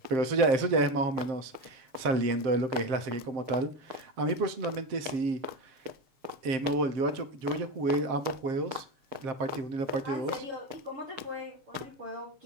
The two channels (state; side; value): late; left; 7.6 ms